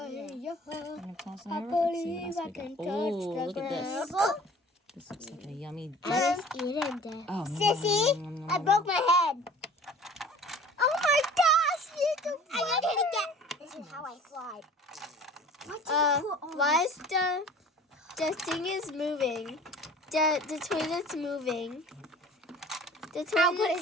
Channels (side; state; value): both; normal; correlation 0.46